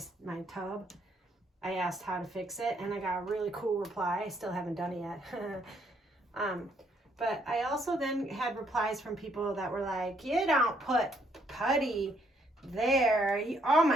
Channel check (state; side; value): normal; both; correlation 0.69